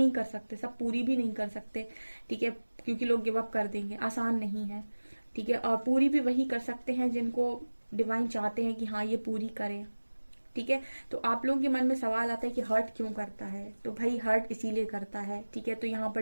कर सकते, सब पूरी भी नहीं कर सकते। ठीक है, क्योंकि लोग गिव अप कर देंगे, आसान नहीं है। ठीक है, और पूरी भी वही कर सकते हैं जिनको डिवाइन चाहते हैं कि हाँ ये पूरी करें। ठीक है, तो आप लोगों के मन में सवाल आता है कि हर्ट क्यों करता है? तो भाई हर्ट इसीलिए करता है। ठीक है, तो यहाँ पर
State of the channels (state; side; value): inverted; both; correlation -1.00